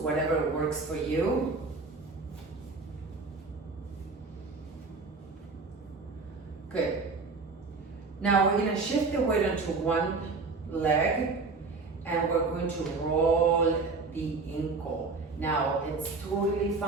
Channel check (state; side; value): quieter; left; 4.1 dB